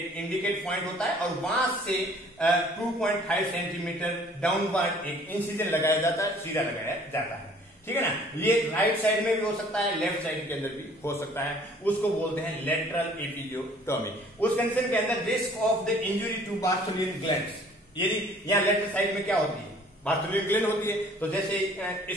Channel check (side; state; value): both; normal; correlation 0.54